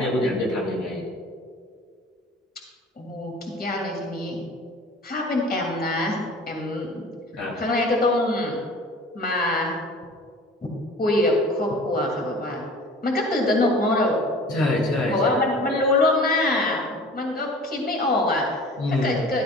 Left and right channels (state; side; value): normal; both; correlation 0.44